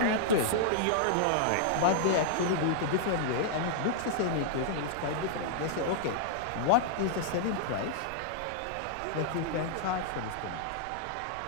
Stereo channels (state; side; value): different; both; correlation -0.01